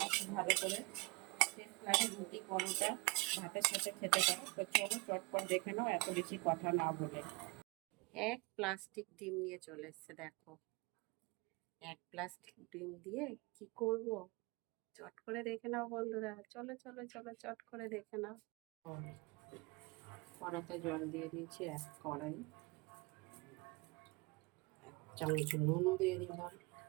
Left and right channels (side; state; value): left; quieter; 26.6 dB